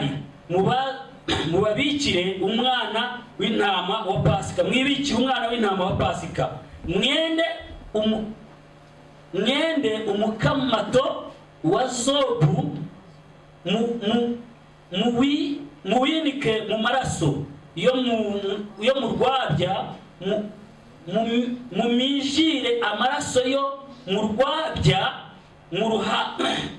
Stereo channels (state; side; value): identical; both; correlation 1.00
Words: mubabikire umwana w'intama wa Pasika. Mwibikire umwana w'intama wa Pasika, mwende umukamato wa zobu, muwinike mu maraso yo mu rwabya, mumijire amaraso yo mu rwabya mu